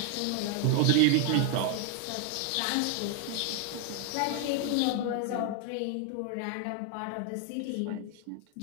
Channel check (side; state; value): both; different; correlation 0.00